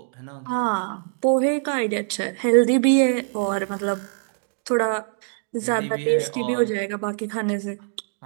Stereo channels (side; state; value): left; silent; digital silence